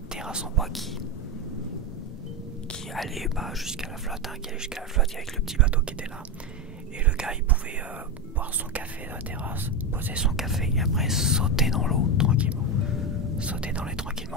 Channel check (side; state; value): both; normal; correlation 0.12